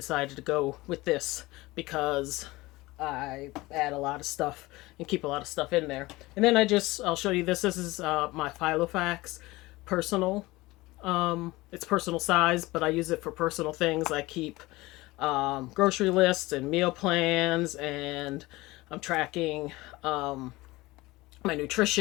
to go with this, because I add a lot of stuff and keep a lot of stuff in there. And then I'll show you this. This is my Filofax personal. It's personal size, but I use it for personal things. I keep grocery lists and meal plans, and I'm tracking my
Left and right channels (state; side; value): quieter; right; 20.4 dB